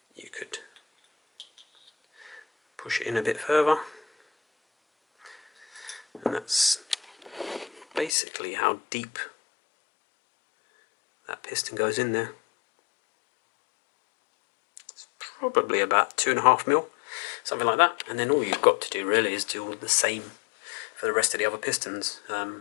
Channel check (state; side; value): drops out; right; at 8.1 s